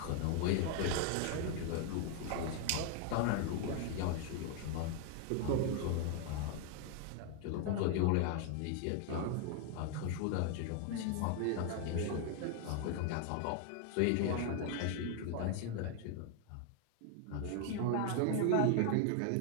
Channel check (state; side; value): different; both; correlation 0.00